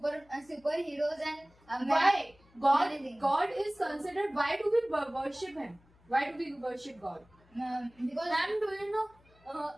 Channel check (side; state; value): left; noise; hum, 30 dB below the sound